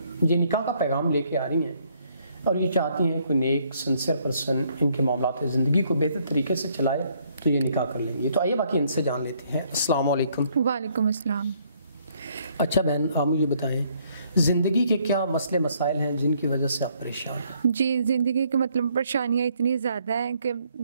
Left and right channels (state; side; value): inverted; both; correlation -0.67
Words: یہ نکاح کا پیغام لے کے آ رہی ہیں اور یہ چاہتی ہیں کوئی نیک سنسیئر پرسن ان کے معاملات زندگی کو بہتر طریقے سے چلائے تو یہ نکاح کر لیں گے۔ تو آئیے باقی ان سے جان لیتے ہیں۔ السلام علیکم۔ وعلیکم السلام۔ اچھا بہن، آپ مجھے بتائیں زندگی کے کیا مسئلے مسائل ہیں جن کی وجہ سے آپ پریشان ہیں؟ جی، زندگی کی پریشانیاں اتنی زیادہ ہیں کہ